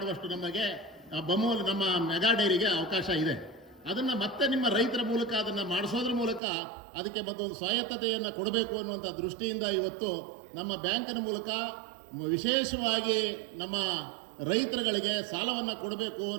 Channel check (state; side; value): drops out; left; at 6.4 s